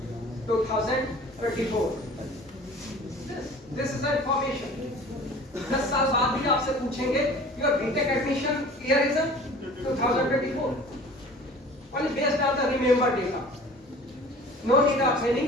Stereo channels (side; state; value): both; normal; correlation 0.44